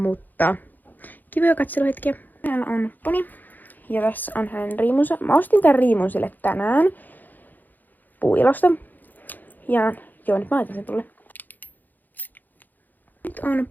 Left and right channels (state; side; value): late; right; 0.085 ms